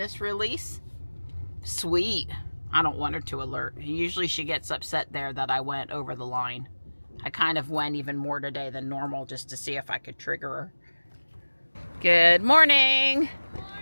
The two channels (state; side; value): inverted; both; correlation -1.00